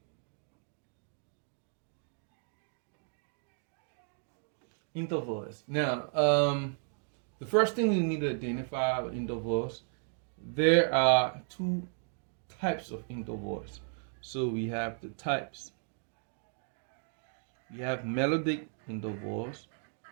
Intervals. Now, the first thing we need to identify with intervals, there are two types of intervals. So we have the types. We have melodic intervals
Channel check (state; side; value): silent; left; 55 dB below the other